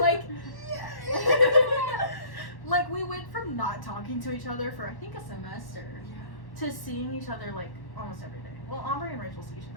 like we went from not talking to each other for I think a semester to seeing each other like almost every day. Well, Aubrey and Rachel see each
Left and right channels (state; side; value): late; right; 1.1 ms